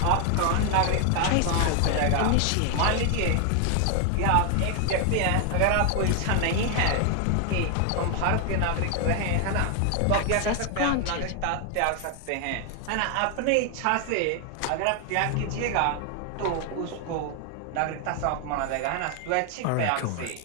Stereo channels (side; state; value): both; different; correlation 0.00